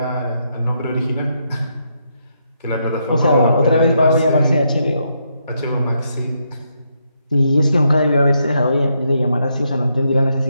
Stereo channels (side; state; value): both; inverted; correlation -0.78